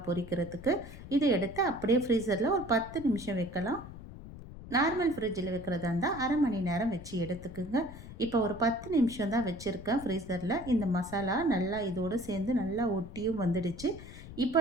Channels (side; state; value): left; noise; rumble, 14 dB below the sound